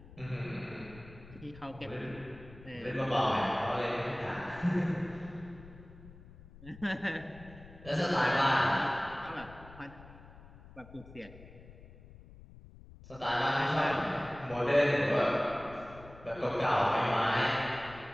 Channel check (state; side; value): noise; left; rumble, 19 dB below the sound